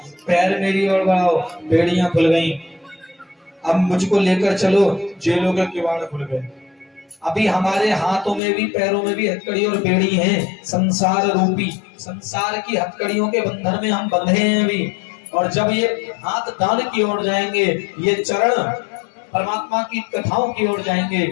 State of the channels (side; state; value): right; drops out; at 8.4 s